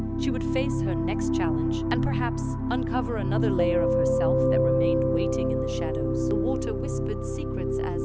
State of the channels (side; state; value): both; identical; correlation 1.00